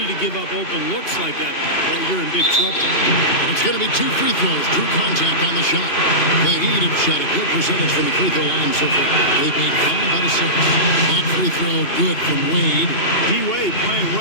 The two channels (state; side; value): late; right; 2.8 ms